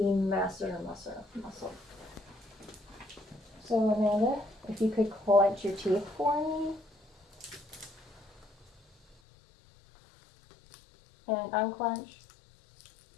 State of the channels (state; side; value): drops out; right; at 9.2 s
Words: masseter muscle. So Amanda, if you could clench your teeth for me. And unclench.